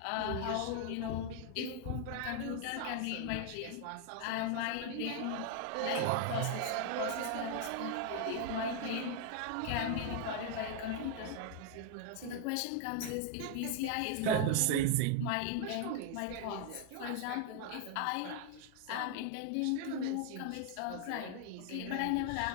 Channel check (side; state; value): both; different; correlation 0.00